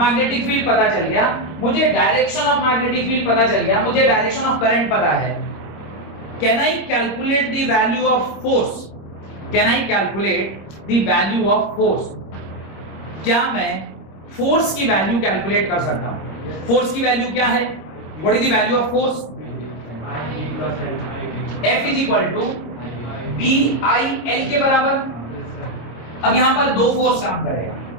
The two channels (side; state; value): right; late; 25 ms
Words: फील्ड पता चल गया, मुझे डायरेक्शन ऑफ मैग्नेटिक फील्ड पता चल गया, मुझे डायरेक्शन ऑफ करंट पता है। Can I calculate the value of force? Can I calculate the value of force? क्या मैं फोर्स की वैल्यू कैलकुलेट कर सकता हूं? फोर्स की वैल्यू क्या है? What is the value of force? F is equal to BI L के बराबर। अब यहां पर दो फोर्स काम करेगा,